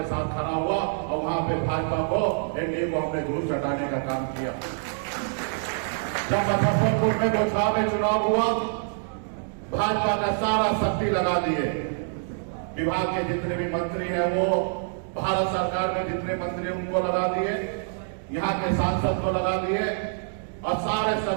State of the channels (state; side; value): silent; left; digital silence